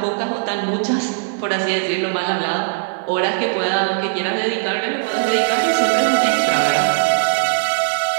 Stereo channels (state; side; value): silent; left; 67 dB below the other